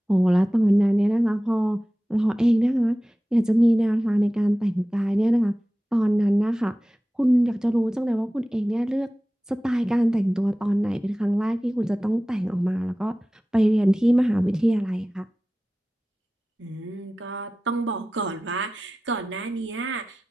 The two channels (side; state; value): both; normal; correlation 0.96